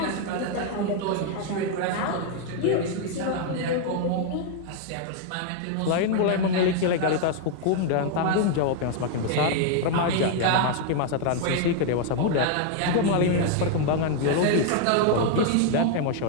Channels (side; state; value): both; different; correlation 0.00